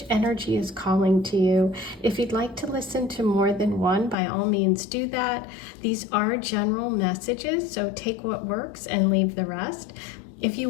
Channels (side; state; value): right; drops out; at 4.2 s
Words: energy is calling to you. If you'd like to listen to more than one, by all means do that. These are general messages, so take what works and leave the rest. If